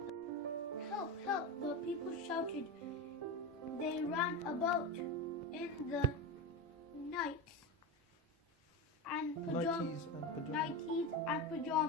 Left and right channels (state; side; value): normal; both; correlation 0.18